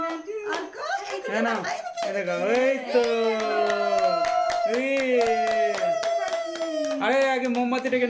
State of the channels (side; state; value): both; identical; correlation 1.00